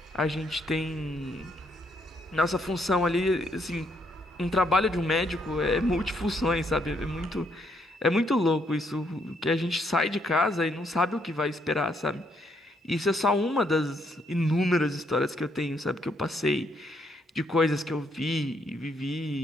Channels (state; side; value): normal; both; correlation 0.73